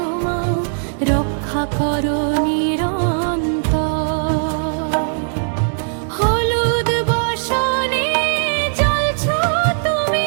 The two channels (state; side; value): silent; left; digital silence